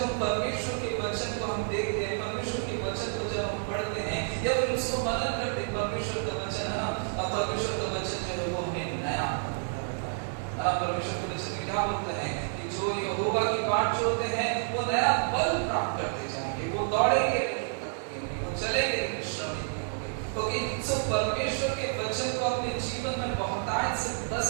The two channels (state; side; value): silent; left; 58 dB below the other